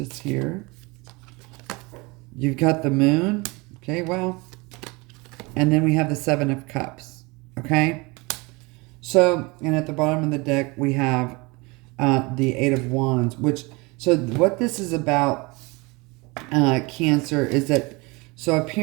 here. You've got the Moon. Okay, well. And then we have the Seven of Cups. Okay. So, and at the bottom of the deck, we have the Eight of Wands. So what this is about, Cancer, is that, so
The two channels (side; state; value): left; quieter; 25.9 dB